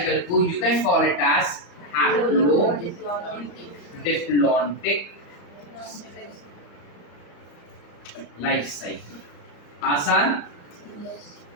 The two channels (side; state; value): right; late; 34 ms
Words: को you can call it as haplodiplontic life cycle. आसान?